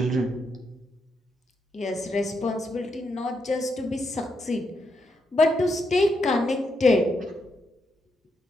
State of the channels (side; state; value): both; normal; correlation 0.81